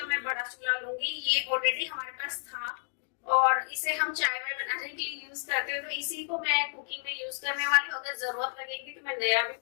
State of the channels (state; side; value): silent; right; digital silence